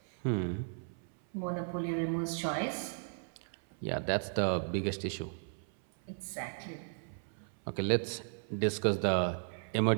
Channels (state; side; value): silent; left; 54 dB below the other